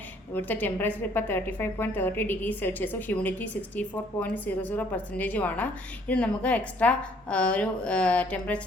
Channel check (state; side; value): normal; both; correlation 0.61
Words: ഇവിടുത്തെ ടെമ്പറേച്ചർ ഇപ്പോൾ 35.30 ഡിഗ്രി സെൽഷ്യസും ഹ്യൂമിഡിറ്റി 64.00%ആണ്. ഇത് നമുക്ക് എക്സ്ട്രാ ഒരു